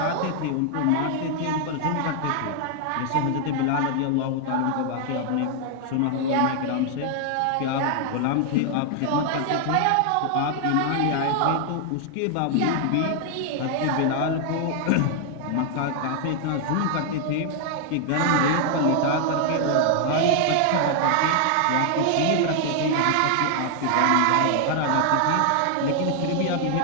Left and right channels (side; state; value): both; different; correlation 0.00